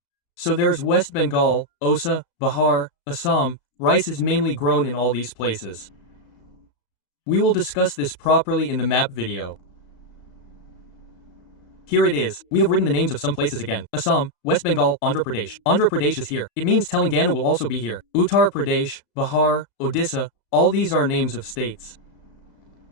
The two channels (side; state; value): right; late; 35 ms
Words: So there's West Bengal, Osa, Bihar, Assam. Rice is mainly grown in all these places. We will discuss this properly in the map video. Here it is. We have written the names of some places again. Assam, West Bengal, Andhra Pradesh. Andhra Pradesh is here. It means Telangana will also be here. Uttar Pradesh, Bihar, Odisha, all these are names of states.